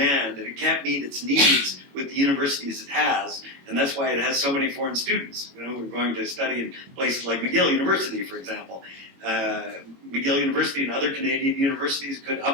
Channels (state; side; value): late; left; 22 ms